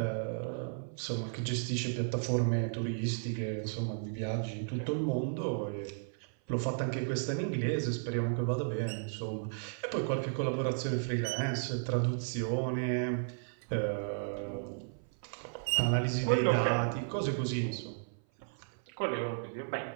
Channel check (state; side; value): silent; left; 55 dB below the other